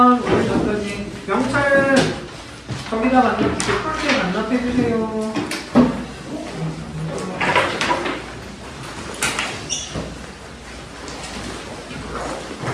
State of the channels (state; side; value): identical; both; correlation 1.00